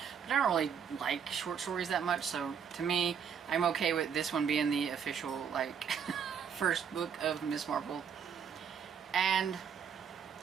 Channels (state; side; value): quieter; left; 7.4 dB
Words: but I don't really like short stories that much, so to me, I'm okay with this one being the official like first book of Miss Marple. And